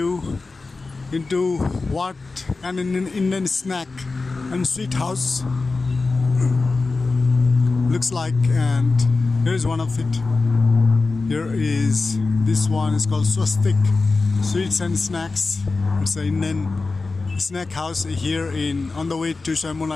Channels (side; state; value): right; quieter; 3.8 dB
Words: into what an Indian snack and sweet house looks like, and here is one of it. Here is this one is called Swastik Sweets and Snacks. It's an Indian snack house here on the way to